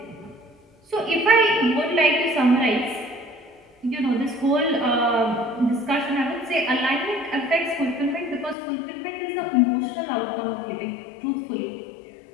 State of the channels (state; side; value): drops out; right; at 8.6 s